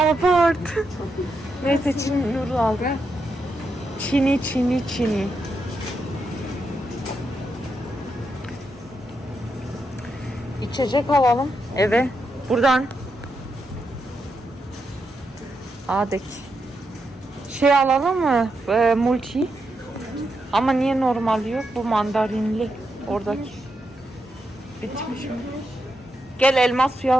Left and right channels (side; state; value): both; normal; correlation 0.84